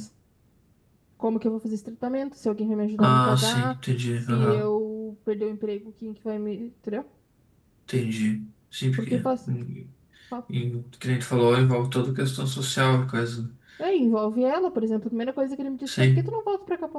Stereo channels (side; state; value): both; identical; correlation 1.00